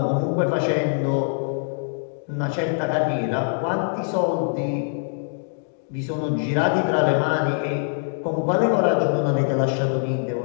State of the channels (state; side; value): silent; right; digital silence